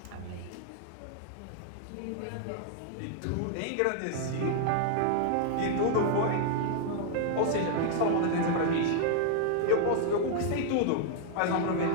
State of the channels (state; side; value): different; both; correlation 0.00